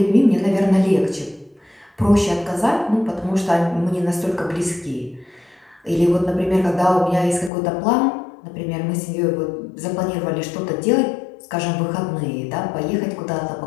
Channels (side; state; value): right; drops out; at 7.5 s